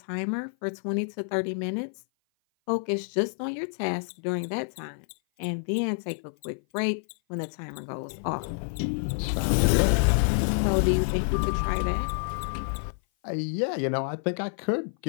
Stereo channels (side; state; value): right; silent; 56 dB below the other